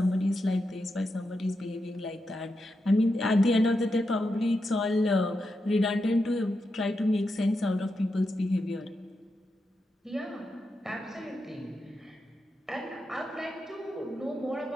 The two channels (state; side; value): normal; both; correlation 0.87